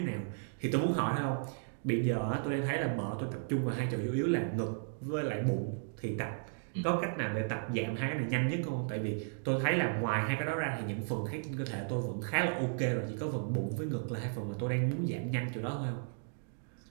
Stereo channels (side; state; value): left; silent; digital silence